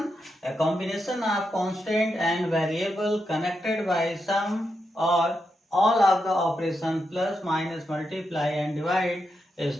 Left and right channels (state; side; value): normal; both; correlation 0.85